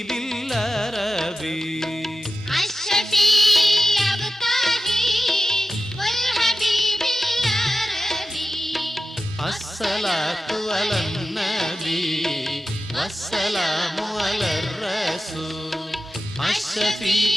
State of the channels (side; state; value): both; normal; correlation 0.93